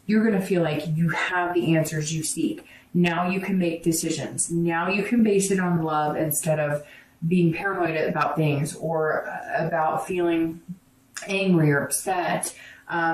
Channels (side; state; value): both; identical; correlation 1.00